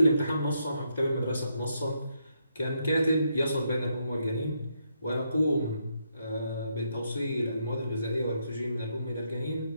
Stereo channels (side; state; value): both; inverted; correlation -0.78